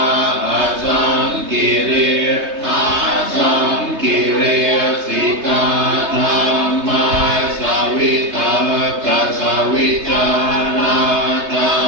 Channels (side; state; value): left; late; 3.2 ms